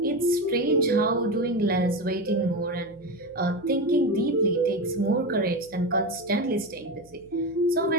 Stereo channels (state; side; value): noise; right; hum, 28 dB below the sound